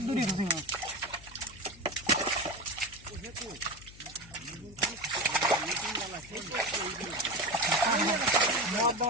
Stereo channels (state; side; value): noise; left; hum, 20 dB below the sound